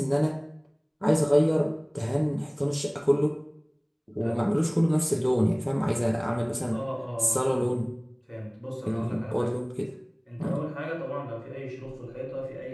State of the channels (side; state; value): both; identical; correlation 1.00